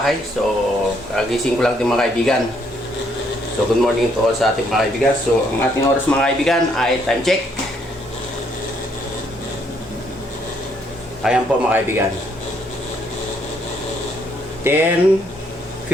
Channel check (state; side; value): normal; both; correlation 0.70